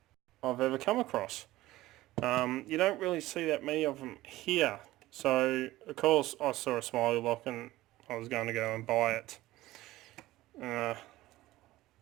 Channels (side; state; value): left; quieter; 16.9 dB